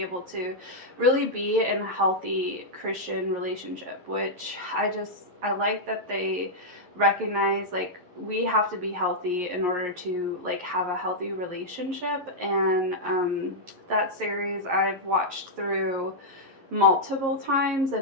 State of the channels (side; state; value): left; late; 11 ms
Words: able to really be in a healthy Christian relationship, which I like that they recognize, like, we have to be healthy in order to like have a healthy relationship. And that series I've watched through multiple times, and